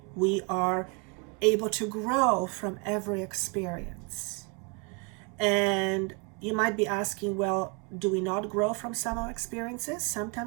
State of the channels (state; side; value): quieter; left; 33.4 dB